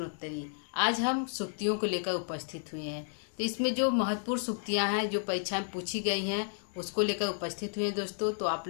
आज हम सूक्तियों को लेकर उपस्थित हुए हैं। तो इसमें जो महत्वपूर्ण सूक्तियां हैं जो परीक्षा में पूछी गई हैं उसको लेकर उपस्थित हुए हैं दोस्तों। तो आप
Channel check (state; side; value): silent; right; digital silence